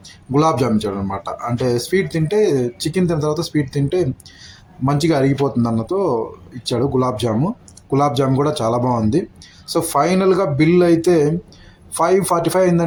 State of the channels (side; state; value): both; identical; correlation 1.00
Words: గులాబ్ జామ్ ఇచ్చాడు అనమాట. అంటే స్వీట్ తింటే, చికెన్ తిన్న తర్వాత స్వీట్ తింటే మంచిగా అరిగిపోతుంది అన్నతో ఇచ్చాడు గులాబ్ జాము. గులాబ్ జామ్ కూడా చాలా బాగుంది. సో ఫైనల్గా బిల్ అయితే 545